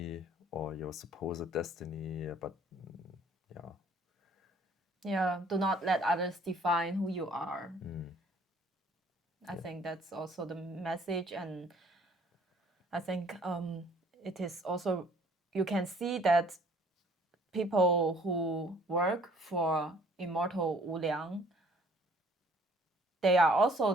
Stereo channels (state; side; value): normal; both; correlation 0.58